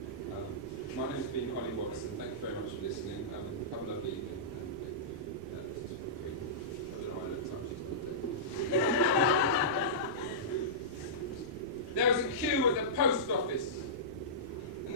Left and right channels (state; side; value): normal; both; correlation -0.17